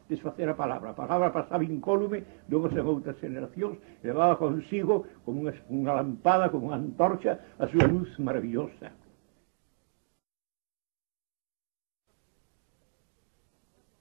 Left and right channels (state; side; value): silent; left; 57 dB below the other